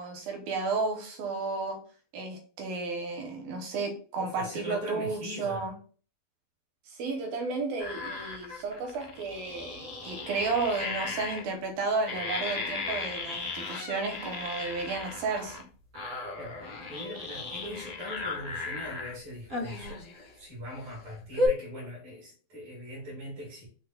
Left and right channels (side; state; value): left; late; 12 ms